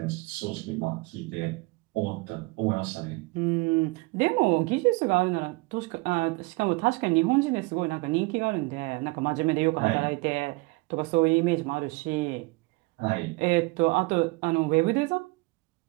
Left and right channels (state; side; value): quieter; left; 25.4 dB